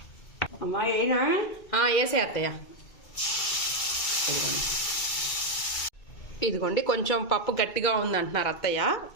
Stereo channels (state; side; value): late; right; 2.3 ms